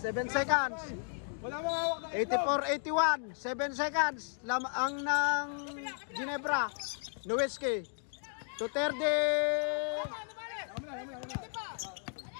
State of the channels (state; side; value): silent; right; 55 dB below the other